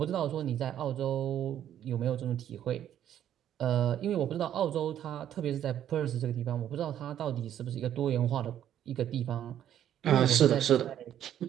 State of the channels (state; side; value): quieter; left; 10.7 dB